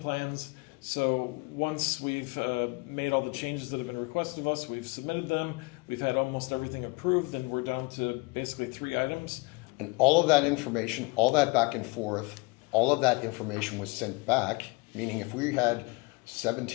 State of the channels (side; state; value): right; quieter; 27.7 dB